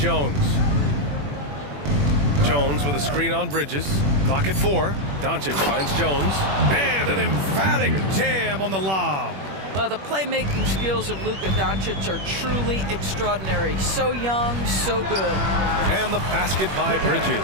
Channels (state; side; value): late; left; 21 ms